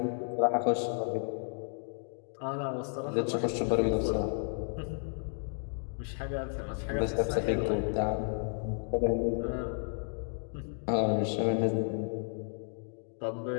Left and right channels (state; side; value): silent; right; 56 dB below the other